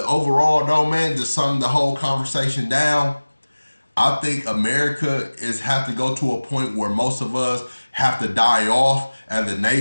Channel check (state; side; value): inverted; both; correlation -1.00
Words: overall, though, man, just summing the whole conversation down, I think America have to go to a point where most of us have to die off as a